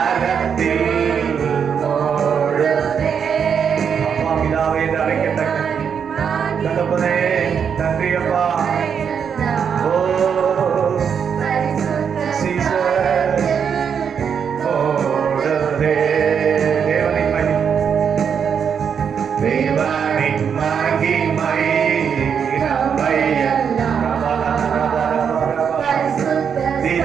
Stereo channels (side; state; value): left; quieter; 7.2 dB